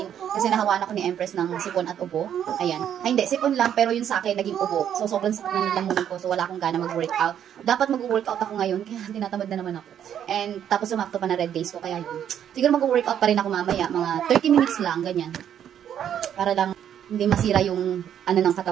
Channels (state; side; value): quieter; left; 9.6 dB